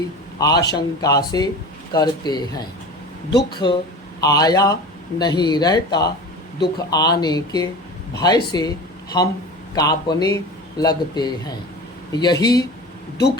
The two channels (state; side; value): normal; both; correlation 0.34